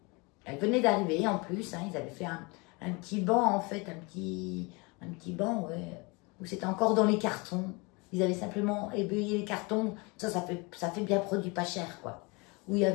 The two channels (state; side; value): quieter; right; 28.0 dB